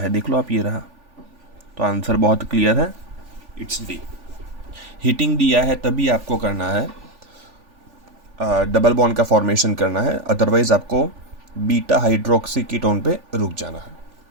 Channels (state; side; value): late; left; 3.4 ms